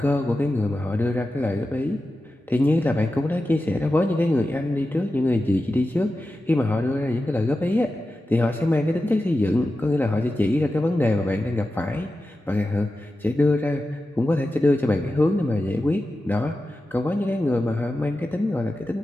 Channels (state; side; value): normal; both; correlation 0.92